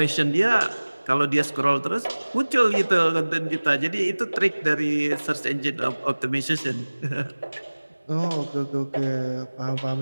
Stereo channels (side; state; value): both; inverted; correlation -1.00